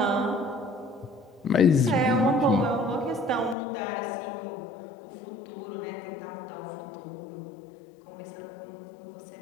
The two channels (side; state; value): right; drops out; at 3.6 s